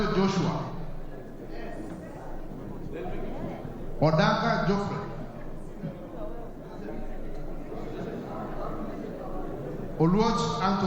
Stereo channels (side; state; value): both; identical; correlation 1.00